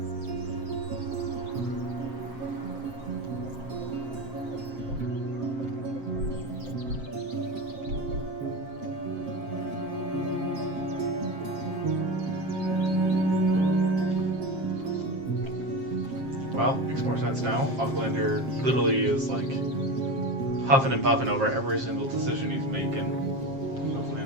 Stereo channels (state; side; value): late; left; 7.5 ms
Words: Well, makes more sense now. Aucklander literally is like huffing and puffing over every single decision he's making.